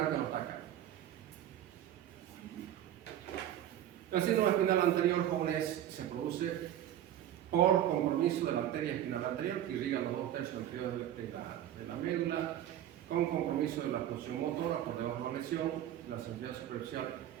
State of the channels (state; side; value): quieter; left; 11.6 dB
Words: que no está acá. El síndrome espinal anterior, jóvenes, se produce por compromiso de la arteria espinal anterior que irriga los 2/3 anteriores de la médula, con compromiso de la función motora por debajo de la lesión, la sensibilidad superficial